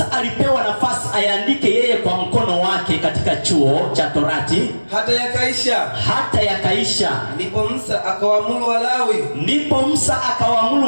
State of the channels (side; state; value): both; inverted; correlation -1.00